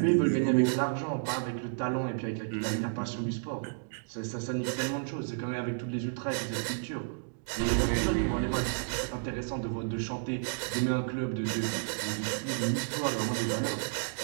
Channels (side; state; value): left; silent; digital silence